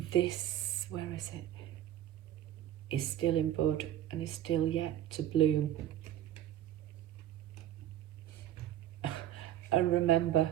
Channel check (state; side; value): quieter; left; 12.0 dB